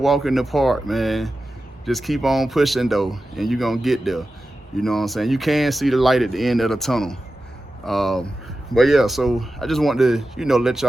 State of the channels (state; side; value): normal; both; correlation 0.93